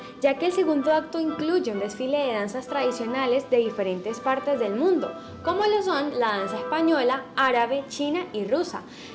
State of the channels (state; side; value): identical; both; correlation 1.00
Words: ya que el segundo acto incluye un desfile de danzas tradicionales de diferentes partes del mundo, como lo son la danza española, árabe, china y rusa,